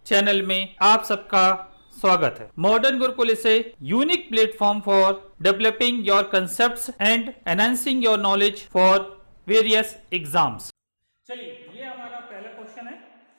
channel में आप सबका स्वागत है। Modern Gurukul is a unique platform for developing your concepts and enhancing your knowledge for various exams. चलिए, ये हमारा पहला क्वेश्चन है।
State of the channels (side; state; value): both; inverted; correlation -1.00